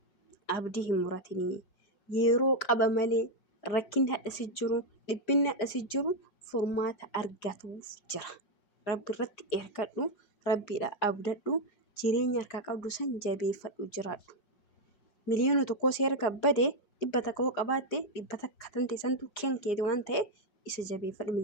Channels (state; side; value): late; right; 4.8 ms